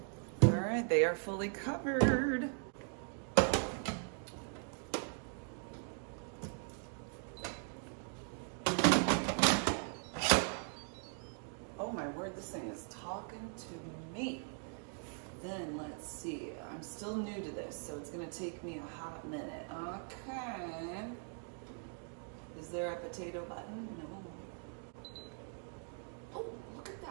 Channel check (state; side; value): silent; left; 51 dB below the other